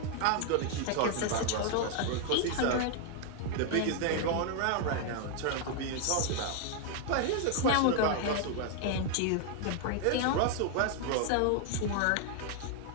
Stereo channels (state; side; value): different; both; correlation 0.00